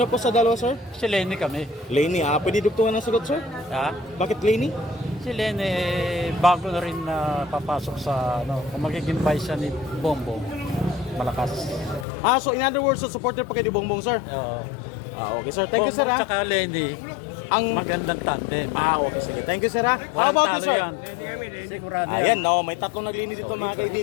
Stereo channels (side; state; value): right; drops out; at 12.1 s